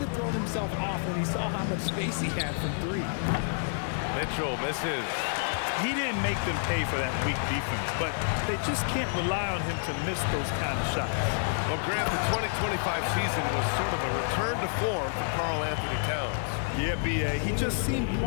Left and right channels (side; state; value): right; silent; digital silence